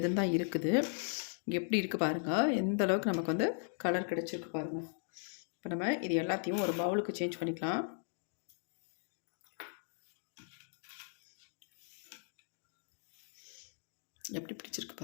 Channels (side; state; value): right; silent; digital silence